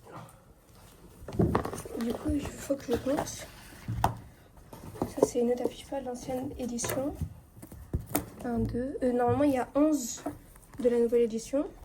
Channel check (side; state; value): both; identical; correlation 1.00